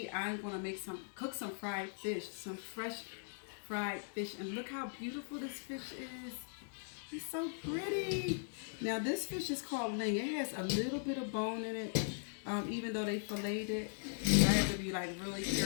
I'm gonna cook some fried fish, some fresh fried fish, and look how beautiful this fish is. It's so pretty. Now this fish is called Ling. It has a little bit of bone in it, even though they filleted it. I have to be like really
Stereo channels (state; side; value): silent; right; digital silence